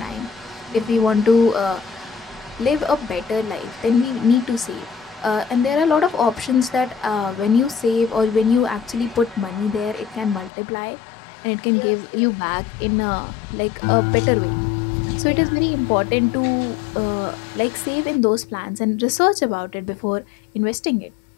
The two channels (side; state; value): right; drops out; at 10.5 s